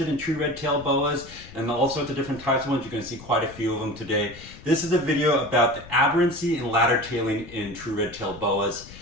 in true red-tailed boas and all sorts of different types of ones, you're going to see quite a few of them today. This is a video about the aberrancy and ladder tailing in true red-tailed boas.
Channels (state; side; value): noise; left; rumble, 18 dB below the sound